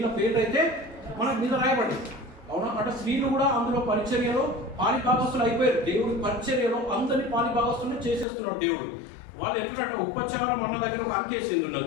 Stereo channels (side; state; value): right; drops out; at 8.2 s